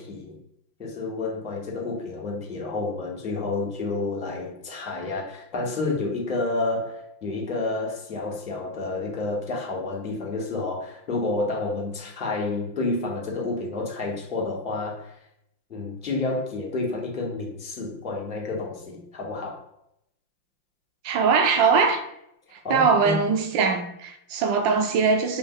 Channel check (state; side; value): late; left; 5.7 ms